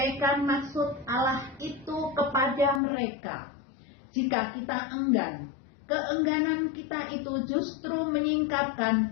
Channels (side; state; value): right; drops out; at 2.8 s